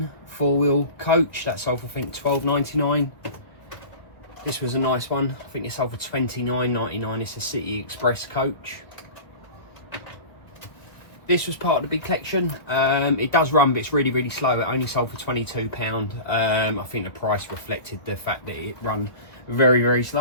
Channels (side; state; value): right; late; 1.7 ms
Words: four-wheel coach. That sold for, I think, $12.99. This was a nice one. I think it sold for $29.99. It's a City Express coach. This was part of the big collection. It does run, but it's really, really slow. It only sold for £22. I think the price reflected the fact that it run very, very